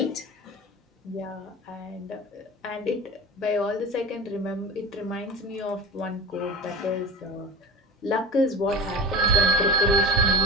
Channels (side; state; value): both; normal; correlation 0.32